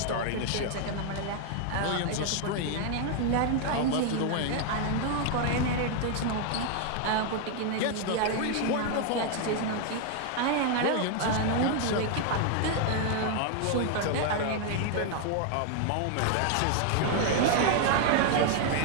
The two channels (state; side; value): different; both; correlation 0.00